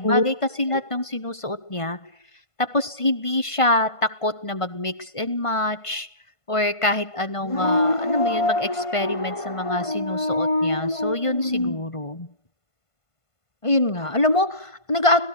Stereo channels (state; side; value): late; right; 1.5 ms